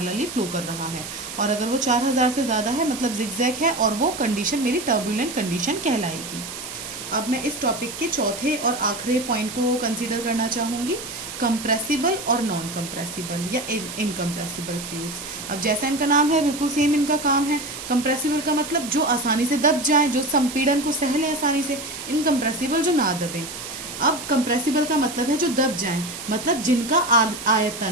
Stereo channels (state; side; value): noise; right; hiss, 9 dB below the sound